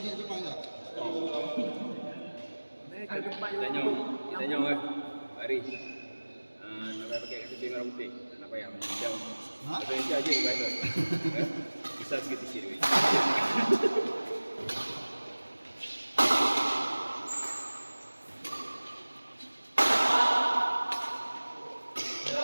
dia depan tak? Mereka tempat Tanya. yang Tanya oi. Mari. Nak pakai kasut merah putih. Nak payah macam. Ha? Indonesia aja guys. Bisa sikit sikit.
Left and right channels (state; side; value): inverted; both; correlation -1.00